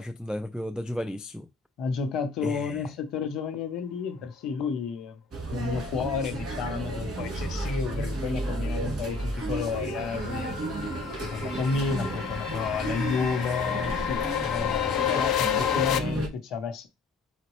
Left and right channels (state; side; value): quieter; right; 3.7 dB